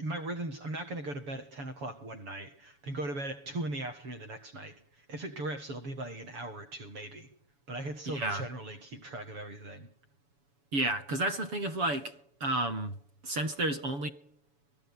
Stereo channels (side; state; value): left; late; 7.1 ms